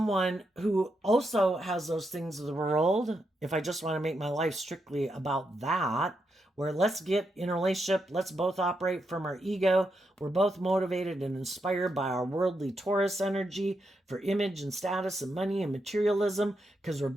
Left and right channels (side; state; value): both; normal; correlation 0.83